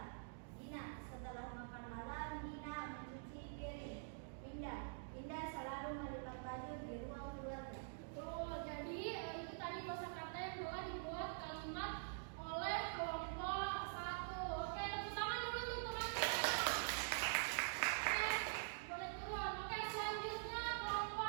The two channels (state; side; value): silent; left; digital silence